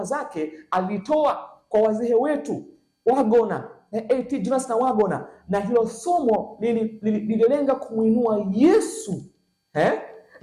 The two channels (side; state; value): both; identical; correlation 1.00